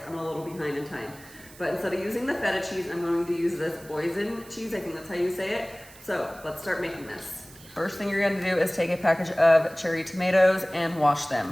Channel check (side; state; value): right; noise; hiss, 21 dB below the sound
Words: I'm a little behind in time. But instead of using the feta cheese, I'm going to use this Boursin cheese. I think that's how you say it. So let's start making this. First thing you're going to do is take a package of cherry tomatoes and wash